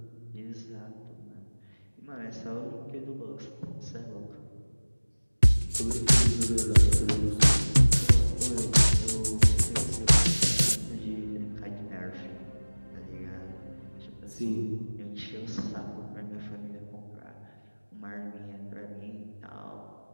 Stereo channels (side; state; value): both; inverted; correlation -1.00